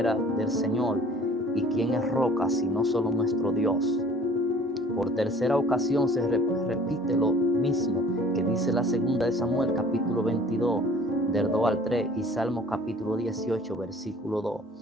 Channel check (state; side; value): normal; both; correlation 0.50